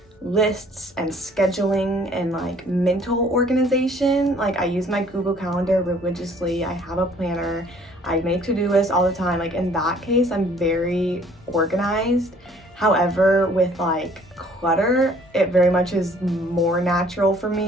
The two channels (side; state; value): both; normal; correlation 0.57